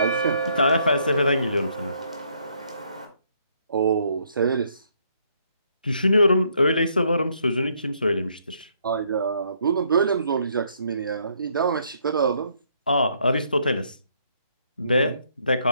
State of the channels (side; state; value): both; inverted; correlation -0.70